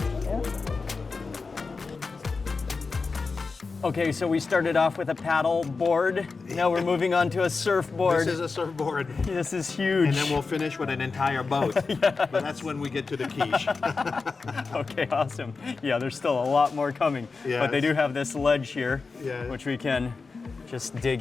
Okay, so we started off with a paddle board. Now we're moving on to a surfboard. This is a surfboard. This is huge. And then we'll finish with an entire boat. But that's when we get to the quiche. Okay, awesome. Yeah, there's still a lot more coming. But they Yes. do have this ledge here, Yeah. which we can just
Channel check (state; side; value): quieter; right; 4.4 dB